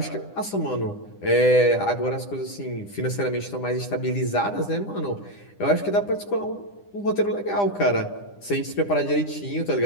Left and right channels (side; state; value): right; late; 9.9 ms